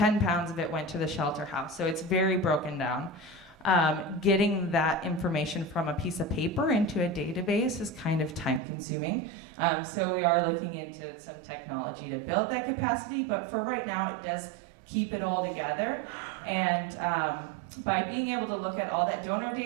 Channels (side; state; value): left; drops out; at 8.6 s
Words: pounds of it went to the shelter house. So it's very broken down. Getting that information from a piece of paper into a database is kind of time consuming. So we are looking into some technology to build that capacity, but for right now it does keep it all together. And by being able to look at all that donor